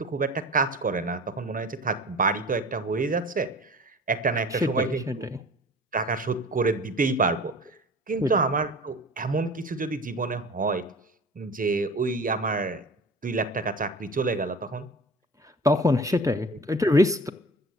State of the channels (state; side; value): normal; both; correlation 0.40